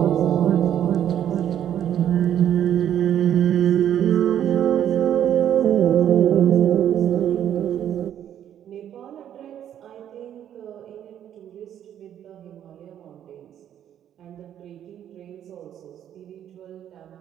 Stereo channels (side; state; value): left; quieter; 10.3 dB